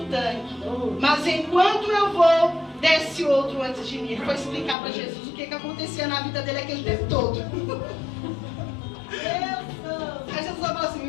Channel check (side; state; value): right; drops out; at 4.8 s